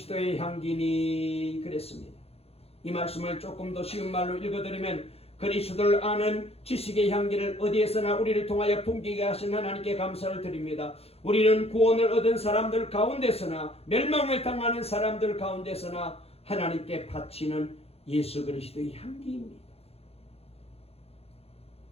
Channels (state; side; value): late; right; 0.29 ms